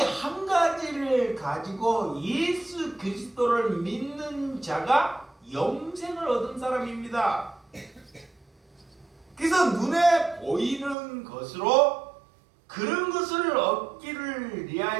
가지를 가지고 예수 그리스도를 믿는 자가 영생을 얻은 사람입니다. 그래서 눈에 보이는 것으로 그런 것을 얻기를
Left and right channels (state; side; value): drops out; left; at 11.0 s